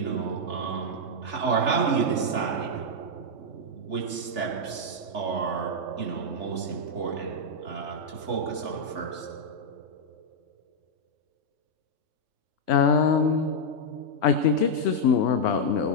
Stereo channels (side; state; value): left; late; 3.4 ms